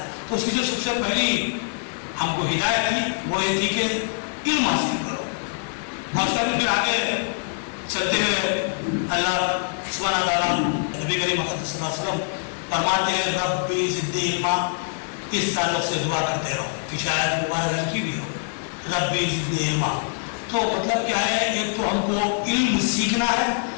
تو اس کی جو سب سے پہلی ہم کو ہدایت تھی وہ یہ تھی کہ علم حاصل کرو، اور اس کا بھی پھر آگے چلتے ہوئے اللہ سبحانہ تعالیٰ نبی کریم صلی اللہ علیہ وسلم فرماتے ہیں ربی زدنی علما، اس تعلق سے دعا کرتے رہو کہ شاید مبارک ہلکی بھی ہو، ربی زدنی علما۔ تو مطلب کیا ہے، ایک تو ہم کو علم سیکھنا ہے،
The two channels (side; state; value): right; silent; digital silence